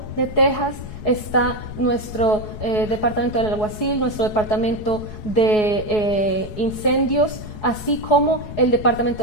de Texas, está nuestro departamento del alguacil, nuestro departamento de incendios, así como el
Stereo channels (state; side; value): late; right; 4.7 ms